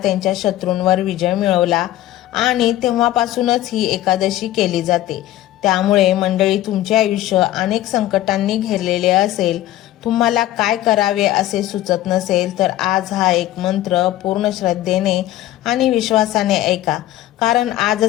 शत्रूंवर विजय मिळवला आणि तेव्हापासूनच ही एकादशी केली जाते. त्यामुळे मंडळी, तुमचे आयुष्य अनेक संकटांनी घेरलेले असेल, तुम्हाला काय करावे असे सुचत नसेल, तर आज हा एक मंत्र पूर्ण श्रद्धेने आणि विश्वासाने ऐका. कारण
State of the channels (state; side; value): quieter; right; 14.4 dB